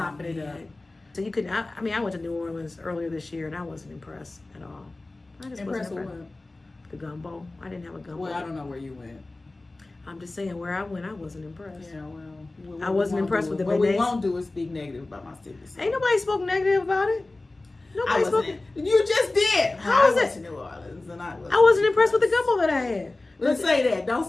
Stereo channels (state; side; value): quieter; right; 3.0 dB